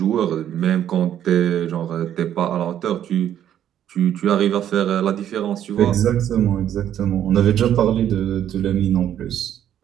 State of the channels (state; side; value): quieter; left; 10.6 dB